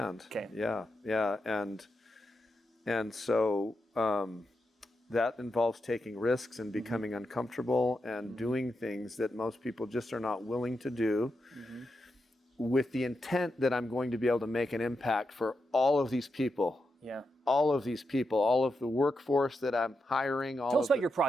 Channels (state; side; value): normal; both; correlation 0.86